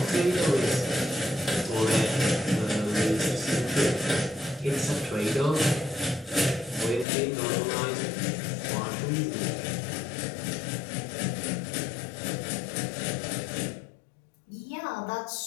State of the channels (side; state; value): right; drops out; at 7.1 s